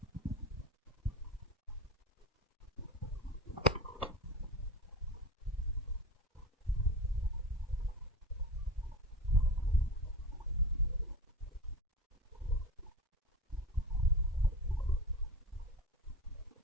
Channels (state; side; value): normal; both; correlation 0.31